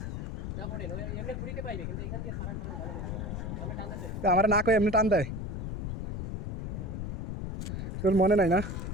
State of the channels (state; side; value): noise; left; rumble, 4 dB below the sound